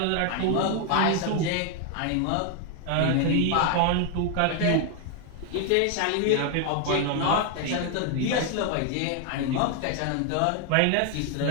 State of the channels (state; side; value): different; both; correlation 0.00